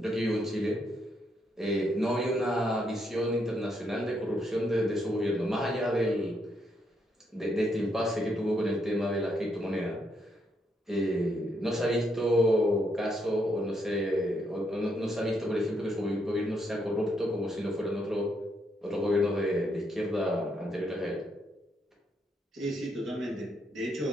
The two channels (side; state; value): both; normal; correlation 0.76